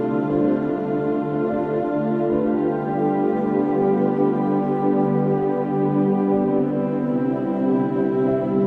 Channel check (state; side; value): identical; both; correlation 1.00